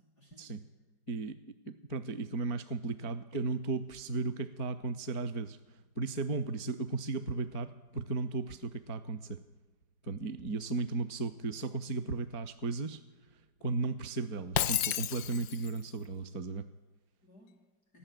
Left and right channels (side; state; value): right; late; 4.9 ms